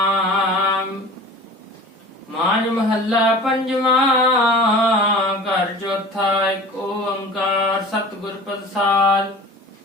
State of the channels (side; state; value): both; normal; correlation 0.40